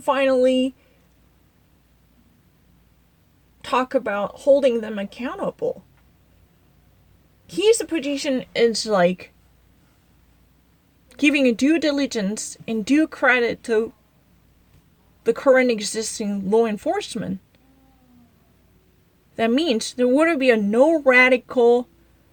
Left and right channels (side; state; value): both; identical; correlation 1.00